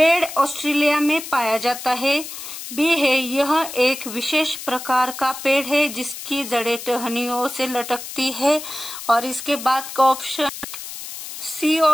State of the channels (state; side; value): noise; left; hiss, 10 dB below the sound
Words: ऑस्ट्रेलिया में पाया जाता है। बी है यह एक विशेष प्रकार का पेड़ है जिसकी जड़ें टहनियों से लटकती है। और इसके बाद का ऑप्शन सी